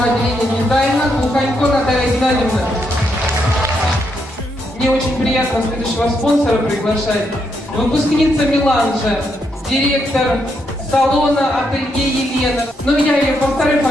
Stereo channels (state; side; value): normal; both; correlation 0.78